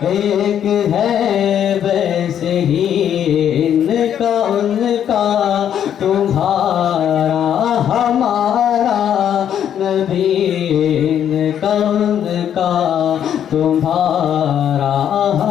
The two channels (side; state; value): right; quieter; 9.6 dB